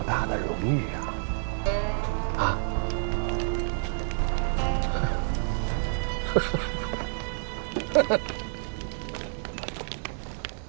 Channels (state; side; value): silent; left; 59 dB below the other